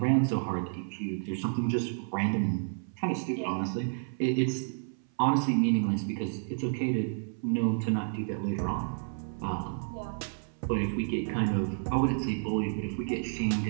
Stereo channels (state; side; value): silent; left; 57 dB below the other